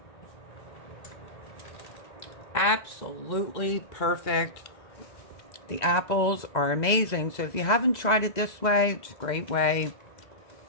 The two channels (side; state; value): right; late; 2.0 ms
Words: Absolutely perfect. The apples are amazing. So if you haven't tried it this way, it's a great way.